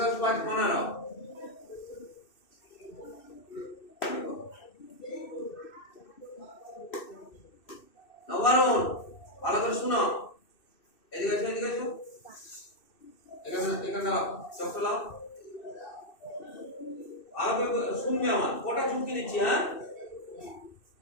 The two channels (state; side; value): late; right; 2.6 ms